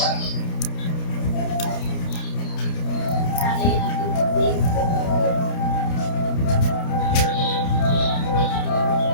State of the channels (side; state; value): right; late; 29 ms